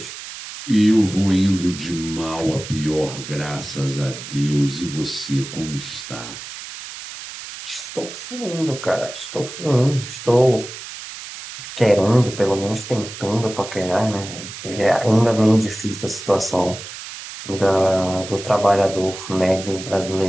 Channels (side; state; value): right; noise; hiss, 11 dB below the sound